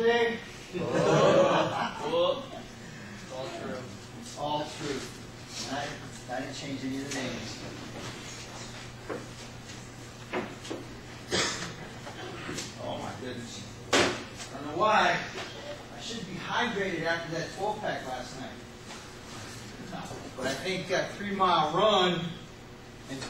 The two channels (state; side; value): identical; both; correlation 1.00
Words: It's all true. It's all true. I didn't change any of the names. Oh my goodness. I don't know why. I should be hydrated after that 12-pack last night. But I think that 3-mile run in